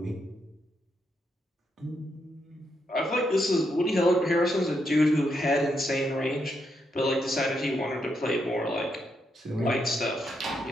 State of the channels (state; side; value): normal; both; correlation 0.80